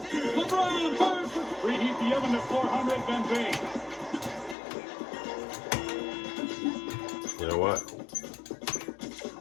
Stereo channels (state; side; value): drops out; right; at 4.5 s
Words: LeBron fires for preheat the oven to 400, then bake. You know what?